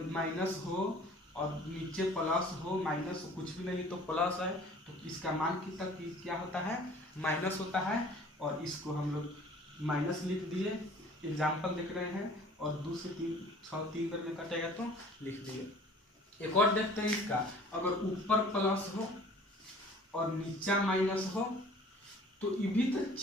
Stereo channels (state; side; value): normal; both; correlation 0.49